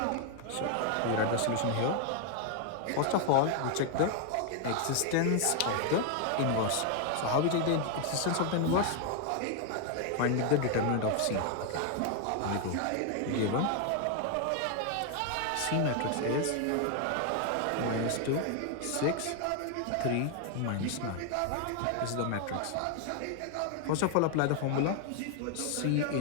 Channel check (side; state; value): both; different; correlation 0.00